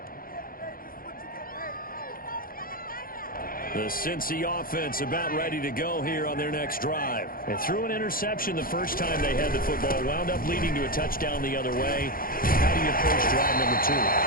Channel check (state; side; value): late; right; 0.42 ms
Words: The Cincy offense about ready to go here on their next drive. And threw an interception the first time they had the football. Wound up leading to a touchdown the other way. How do you approach drive number 2?